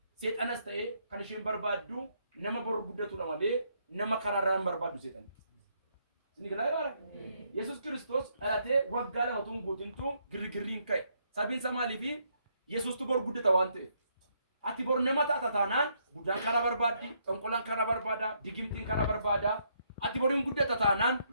seexanas ta'e kan isheen barbaaddu nama boru guddatudha malee nama karaarraan barbaaddu seexan. Isin galaa Yesuus Kiristoos dhalatee waggaa lama tun guutintu girgirriin ka'e. Sabiinsa maaliifi Yesuustu boru guddata waan ta'eef. Ati boru nama taata taanaan guddaan karaa barbaaddi, xonqolaan karaa barbaada, digimtiin karaa barbaada. Ati boruun guddata taanaan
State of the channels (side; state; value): both; inverted; correlation -0.74